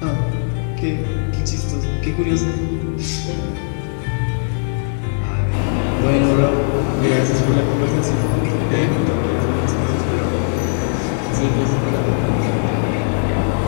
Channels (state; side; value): silent; right; 67 dB below the other